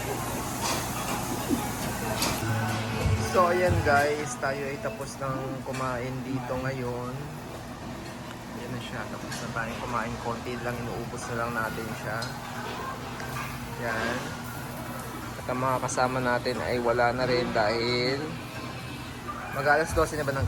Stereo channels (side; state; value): both; identical; correlation 1.00